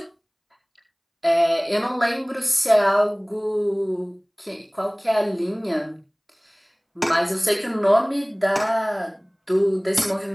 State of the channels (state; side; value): identical; both; correlation 1.00